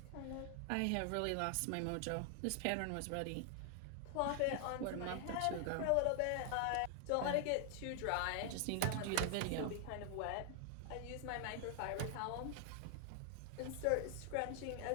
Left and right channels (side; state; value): both; different; correlation 0.00